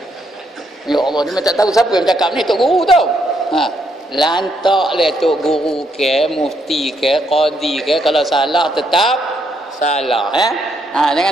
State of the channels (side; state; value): both; normal; correlation 0.75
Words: Ya Allah, dia tak tahu siapa yang cakap ni, tok guru tau. Lantaklah tok guru ke, mufti ke, qadi ke, kalau salah tetap salah ya.